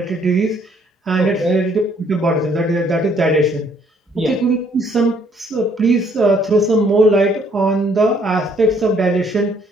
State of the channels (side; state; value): both; normal; correlation 0.64